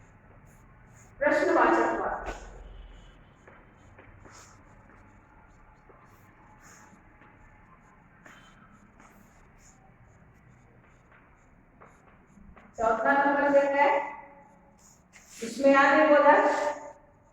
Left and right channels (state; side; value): identical; both; correlation 1.00